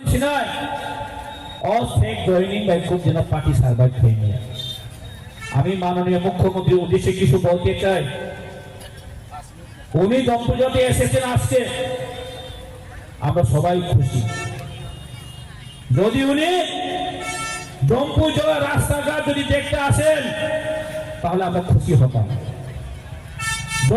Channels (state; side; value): identical; both; correlation 1.00